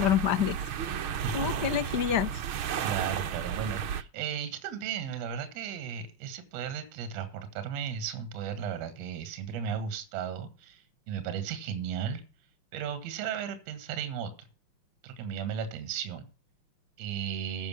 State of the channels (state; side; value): late; left; 6.5 ms